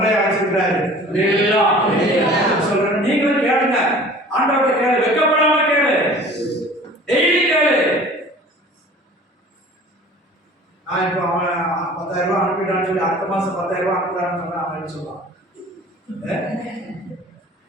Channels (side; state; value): both; normal; correlation 0.45